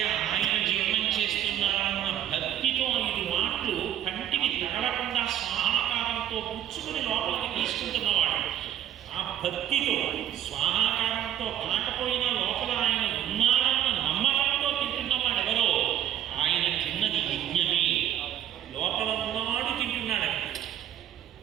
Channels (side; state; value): left; quieter; 10.9 dB